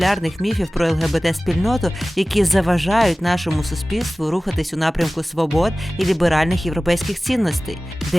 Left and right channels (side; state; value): both; normal; correlation 0.97